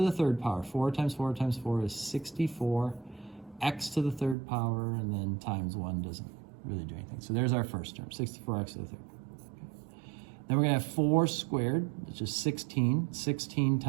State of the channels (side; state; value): left; drops out; at 4.4 s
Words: the third power. 4 times 4 times 4 is 64. X to the third power, and then times 1 doesn't really do anything. So there's our first term, 64x to the third. Okay. Then we're going to have 4 squared, which is 16. 16